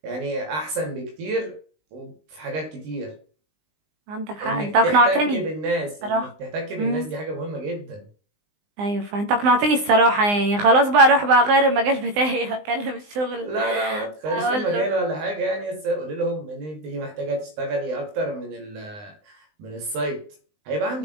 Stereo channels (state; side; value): late; left; 19 ms